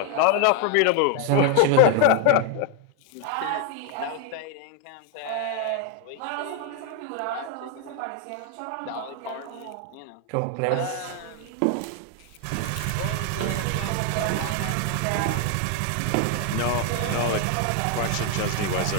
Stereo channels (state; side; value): different; both; correlation 0.01